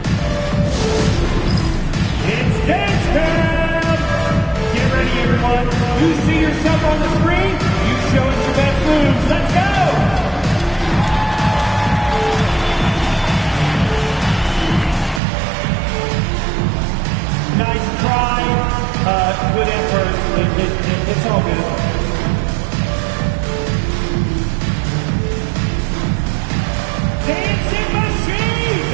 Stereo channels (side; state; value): left; drops out; at 15.2 s